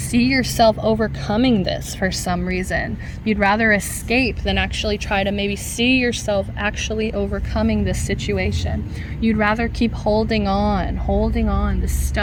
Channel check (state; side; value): identical; both; correlation 1.00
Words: overcoming this for some reason. You'd rather escape than actually try to maybe see yourself actually overcoming this situation. You'd rather keep holding on. This